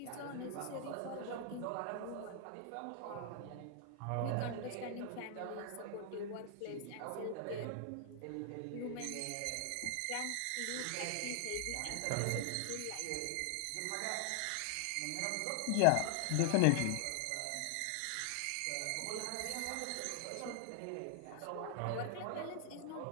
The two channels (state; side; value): different; both; correlation 0.00